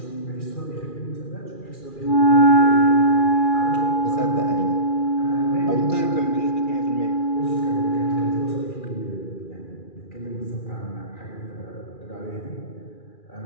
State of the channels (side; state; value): right; late; 2.4 ms